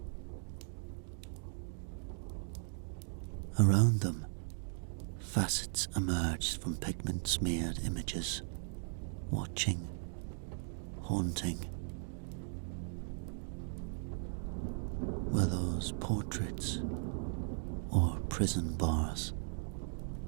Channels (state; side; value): silent; left; digital silence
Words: Around them, facets emerged from pigment-smeared images, watching, haunting. Were those portraits or prison bars?